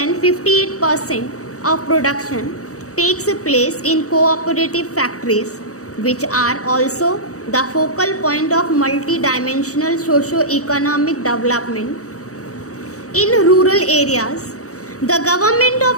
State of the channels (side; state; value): right; late; 0.65 ms